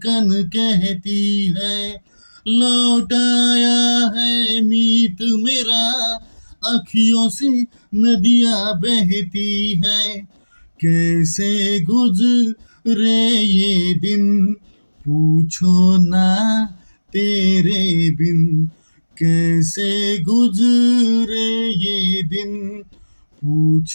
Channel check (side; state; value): both; inverted; correlation -1.00